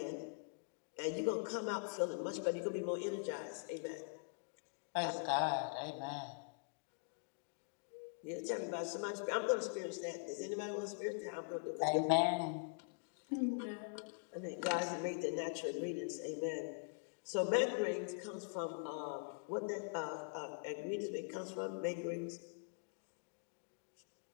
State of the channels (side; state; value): right; silent; digital silence